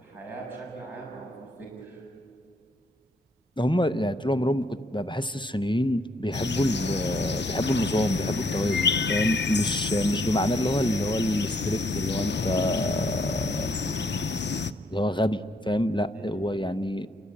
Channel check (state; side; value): normal; both; correlation 0.70